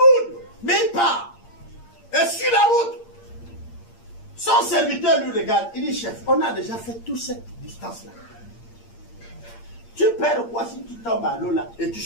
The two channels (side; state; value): right; late; 8.7 ms